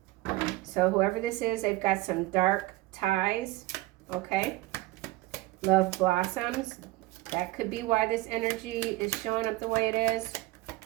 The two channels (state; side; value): quieter; left; 19.2 dB